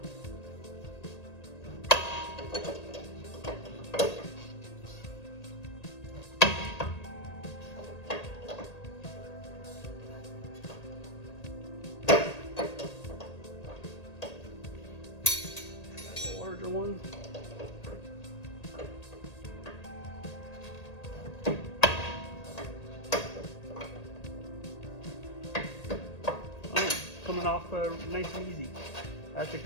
Larger one. Oh, coming off nice and easy. That's a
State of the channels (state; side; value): late; right; 1.8 ms